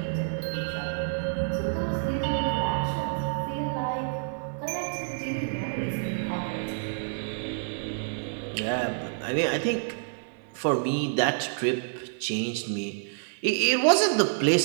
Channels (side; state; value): left; silent; 55 dB below the other